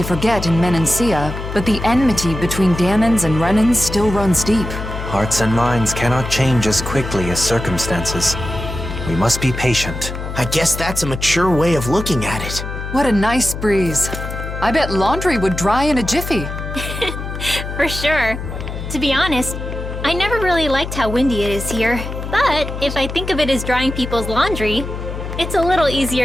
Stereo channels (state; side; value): noise; left; hum, 7 dB below the sound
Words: forget in Menancia, but the enmity between Dahnans and Renans still runs deep. Hearts and minds cannot change as quickly as circumstances. We must be patient. I guess that's a mature way of looking at it. What a nice breeze. I bet laundry would dry in a jiffy. For sure. To be honest, I never really liked how windy it is here. But if I think of it as drying people's laundry, it's a little